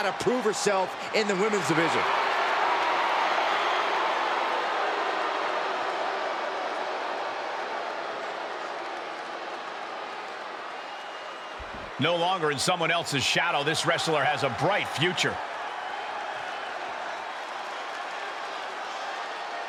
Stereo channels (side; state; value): both; identical; correlation 1.00